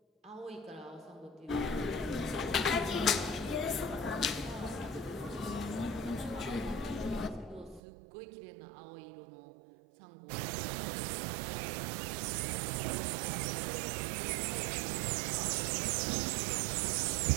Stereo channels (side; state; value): left; drops out; at 7.8 s